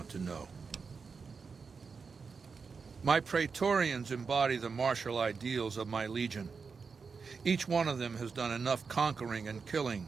to know? My Praetorians embody the martial ideals of my legion. Each one of them has done enough conquering and killing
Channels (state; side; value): quieter; left; 5.2 dB